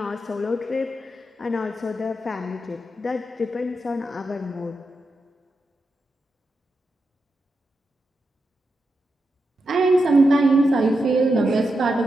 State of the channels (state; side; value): normal; both; correlation 0.87